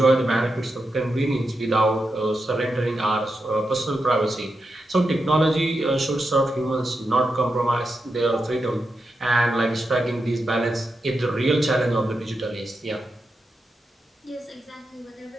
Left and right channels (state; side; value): normal; both; correlation 0.87